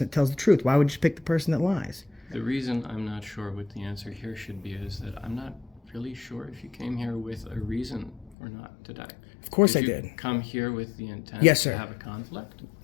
that tells the truth. Why would you pick the person that lies? The reason I'm not sure what the answer here should be is that I'm not really sure if you came here with a reason or not today. Of course I did. did. Come here with the intent Yes, sir. to have a conflict?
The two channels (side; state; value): right; drops out; at 8.3 s